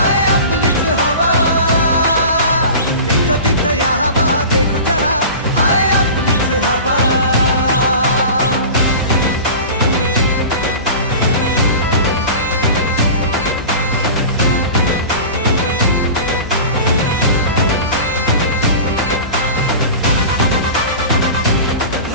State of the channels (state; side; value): inverted; both; correlation -0.34